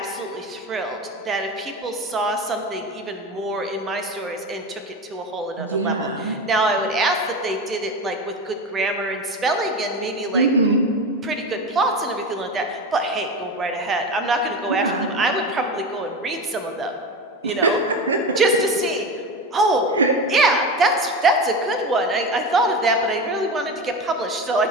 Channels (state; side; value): normal; both; correlation 0.23